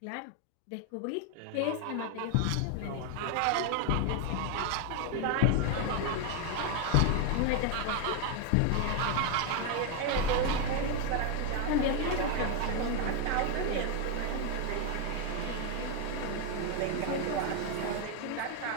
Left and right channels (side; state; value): both; different; correlation 0.01